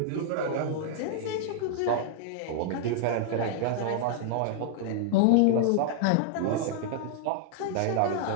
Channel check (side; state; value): both; different; correlation -0.01